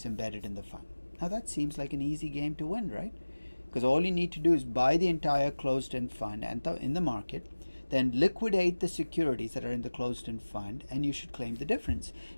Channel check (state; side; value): inverted; both; correlation -1.00